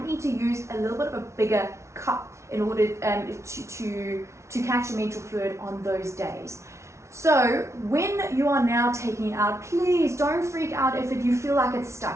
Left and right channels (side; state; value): left; late; 0.13 ms